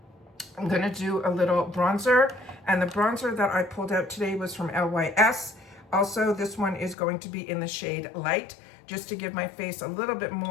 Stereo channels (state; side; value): drops out; right; at 7.0 s